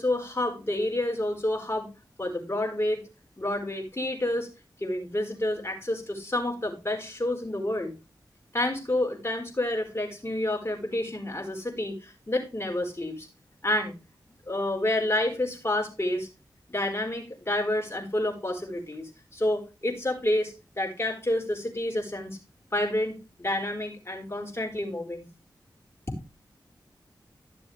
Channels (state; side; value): normal; both; correlation 0.73